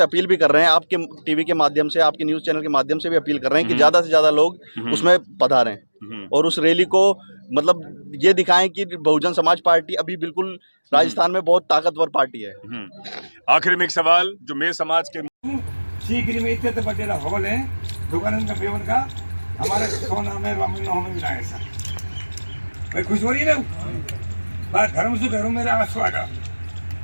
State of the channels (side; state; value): both; inverted; correlation -1.00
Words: अपील भी कर रहे हैं, आपके टीवी के माध्यम से, आपके न्यूज़ चैनल के माध्यम से भी अपील कर रहे हैं कि ज़्यादा से ज़्यादा लोग उसमें पधारें और उस रैली को मतलब ये दिखाएं कि बहुजन समाज पार्टी अभी बिल्कुल राजस्थान में बहुत ताकतवर पार्टी है। आखिर में एक सवाल जो मेरे समाज के सीकरी में इतने बड़े हॉल है दुकान का बेवन का, हमारे सोना में हमें मिला है सर। भाई खुश हो रही है ना, बात धर्म से घरों मेरा आस्वागा